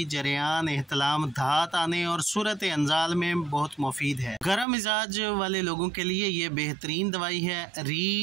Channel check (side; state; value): left; drops out; at 4.7 s